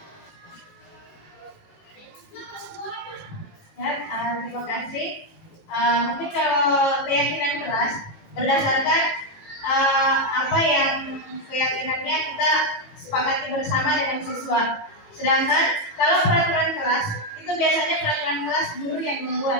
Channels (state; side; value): late; right; 18 ms